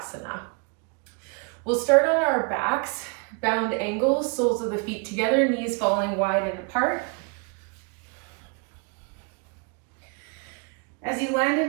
We'll start on our backs, bound ankles, soles of the feet together, knees falling wide and apart. As you land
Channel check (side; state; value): left; quieter; 35.4 dB